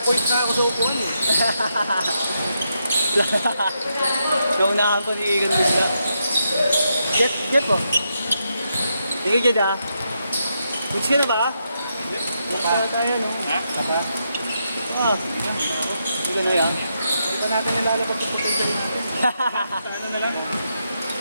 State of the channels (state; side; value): inverted; both; correlation -0.82